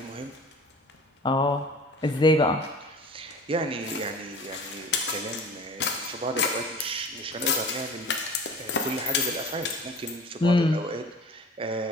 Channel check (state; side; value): normal; both; correlation 0.42